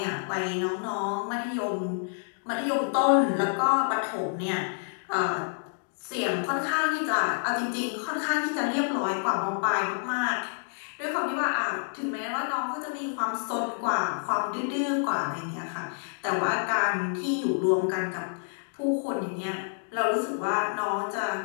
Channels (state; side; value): silent; right; digital silence